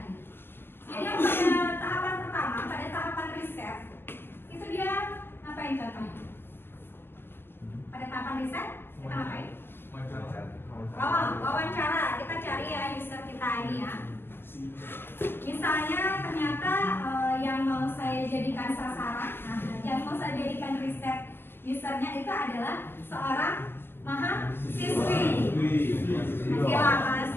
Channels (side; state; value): right; late; 0.10 ms